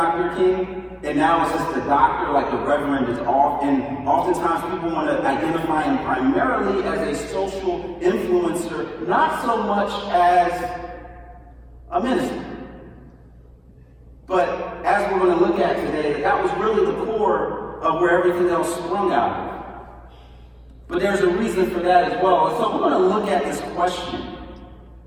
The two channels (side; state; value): both; identical; correlation 1.00